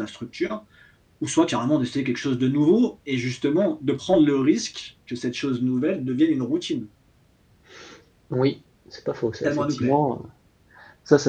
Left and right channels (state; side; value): identical; both; correlation 1.00